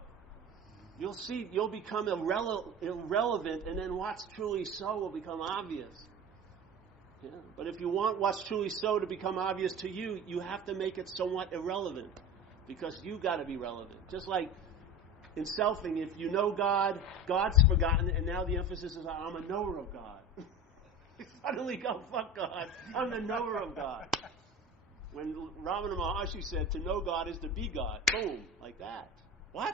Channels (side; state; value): both; normal; correlation 0.32